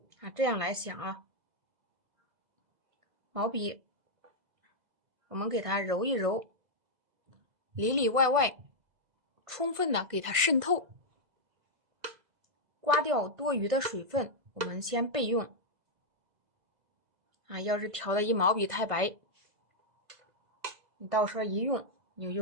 啊。这样来想啊，毛笔我们给它揉一揉，里里外外充分的给它渗透，刮掉多余的水分，我们先备用啊。要是调的一毛笔太白，你到时候一用，你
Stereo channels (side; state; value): left; late; 2.0 ms